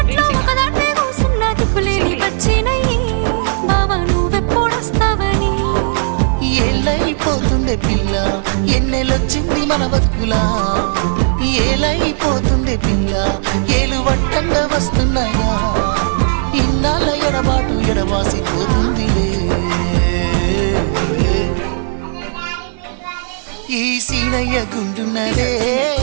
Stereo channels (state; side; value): silent; left; digital silence